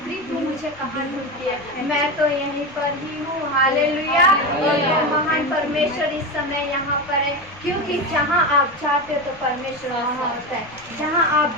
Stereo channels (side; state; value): left; noise; rumble, 26 dB below the sound